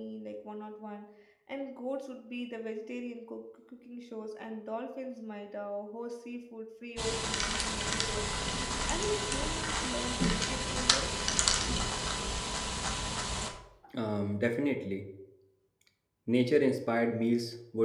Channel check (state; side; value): identical; both; correlation 1.00